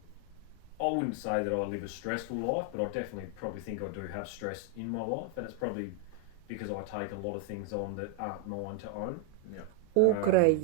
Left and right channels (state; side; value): different; both; correlation 0.01